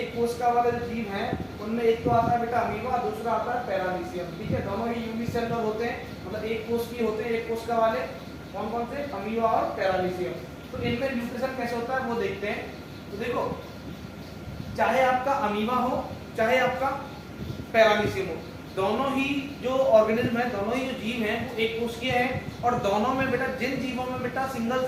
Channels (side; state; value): both; identical; correlation 1.00